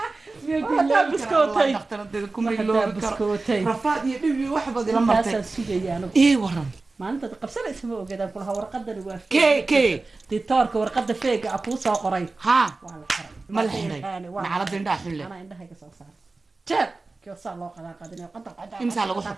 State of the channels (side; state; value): left; quieter; 3.5 dB